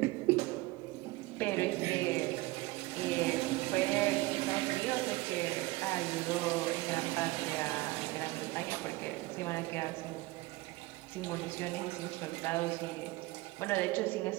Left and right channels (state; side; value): quieter; left; 20.6 dB